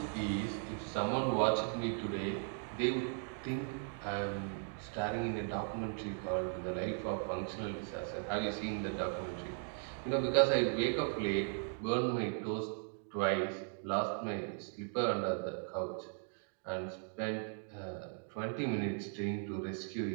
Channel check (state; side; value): silent; left; 53 dB below the other